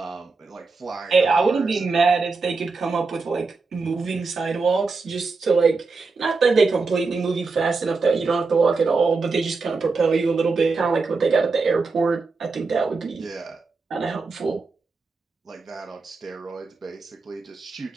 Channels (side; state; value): left; quieter; 4.2 dB